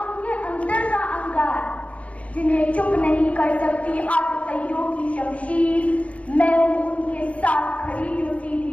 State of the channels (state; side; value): late; right; 0.065 ms